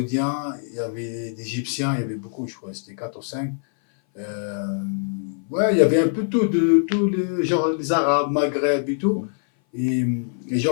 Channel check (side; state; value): right; silent; 58 dB below the other